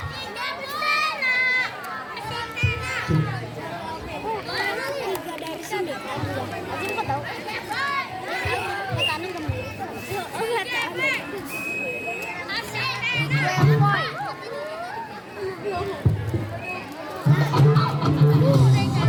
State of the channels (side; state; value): both; identical; correlation 1.00